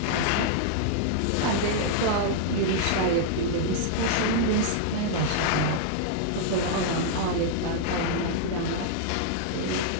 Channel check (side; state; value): both; different; correlation -0.01